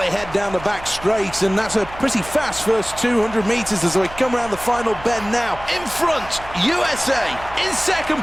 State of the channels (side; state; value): right; noise; hum, 16 dB below the sound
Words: head down the back straight, and that's a pretty fast first 200 metres as we come around the final bend now. In front, USA. In